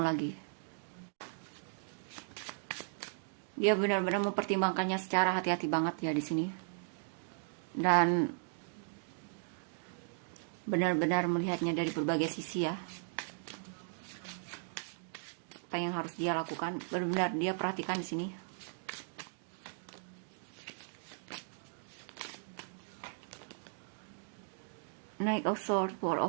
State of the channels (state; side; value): silent; left; digital silence